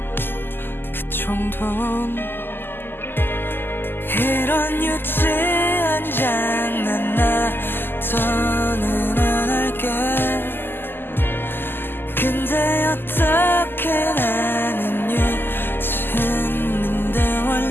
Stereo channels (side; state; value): right; late; 0.098 ms